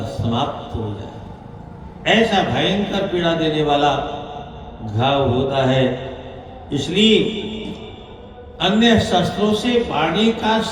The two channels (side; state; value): both; identical; correlation 1.00